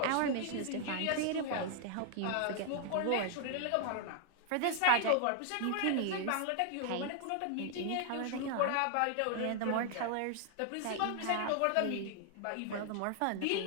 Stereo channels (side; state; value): both; different; correlation 0.00